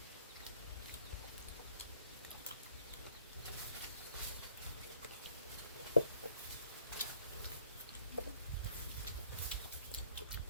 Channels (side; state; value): both; inverted; correlation -0.62